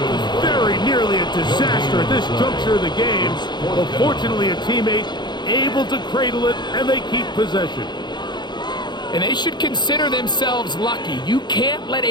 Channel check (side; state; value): right; late; 0.21 ms